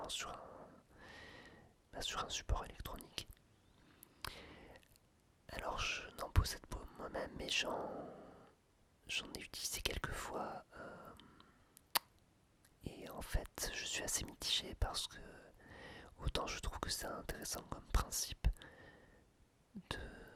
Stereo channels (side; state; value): both; identical; correlation 1.00